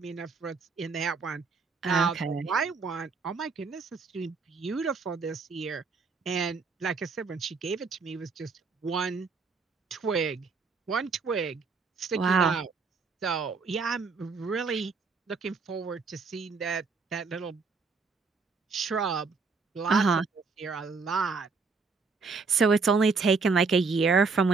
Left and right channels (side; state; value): left; quieter; 4.6 dB